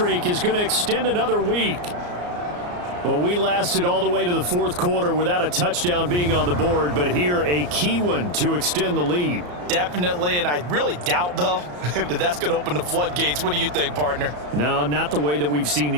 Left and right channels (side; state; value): left; late; 34 ms